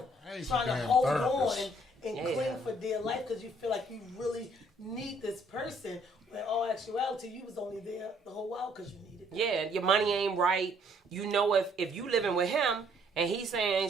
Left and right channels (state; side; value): normal; both; correlation 0.64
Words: trying to hold on and cling for dear life because you feel like you really need this person. When in all actuality, you was only there the whole while because you needed them. Yeah, your money ain't right. You know, if you living with him and he's saying,